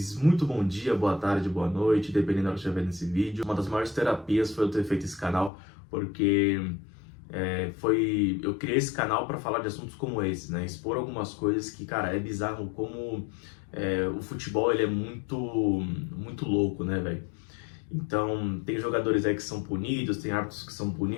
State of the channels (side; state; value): right; drops out; at 5.5 s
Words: Muito bom dia, boa tarde, boa noite, dependendo da hora que estiver vendo esse vídeo. Uma das maiores terapias foi eu ter feito esse canal, porque eu criei esse canal para falar de assuntos como esse, né? Expor algumas coisas que, cara, é bizarro como o futebol ele é muito louco, né, velho? Então, tem jogadores aí que são punidos, tem árbitros que são